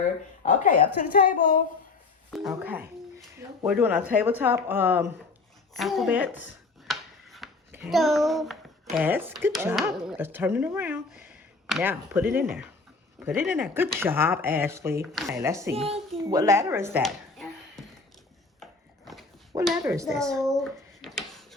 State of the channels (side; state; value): right; quieter; 3.9 dB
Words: Okay, up to the table. Okay. We're doing our tabletop alphabets. Okay. Yes, good job. Let's turn it around. Now, put it in there. Put it in there. Good job, Ashley. Okay, let's see. What letter is that? What letter is this?